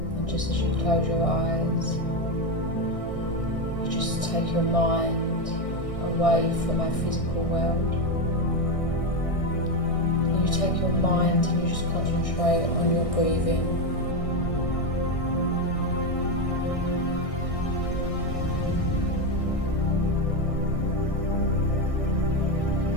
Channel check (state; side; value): late; right; 1.6 ms